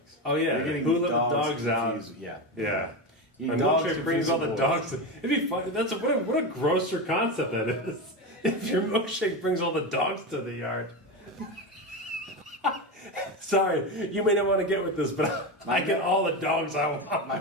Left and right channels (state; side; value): normal; both; correlation 0.17